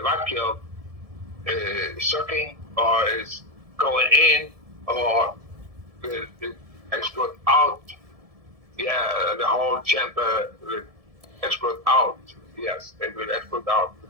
vacuum sucking or is going in or will it explode out? Yeah, the whole chamber will explode out. Yes, it will explode out,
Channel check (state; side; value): late; left; 1.7 ms